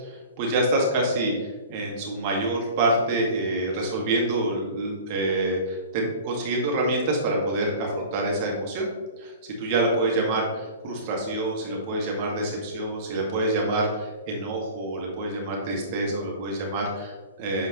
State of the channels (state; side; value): inverted; both; correlation -0.39